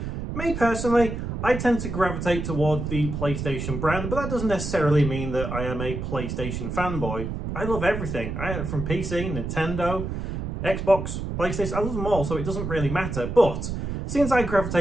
Me personally, I tend to gravitate toward the PlayStation brand, but that doesn't necessarily mean that I am a PlayStation fanboy. I love everything, from PC, Nintendo, Xbox, PlayStation, I love them all, so it doesn't really matter. But since I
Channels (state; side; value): noise; right; rumble, 5 dB below the sound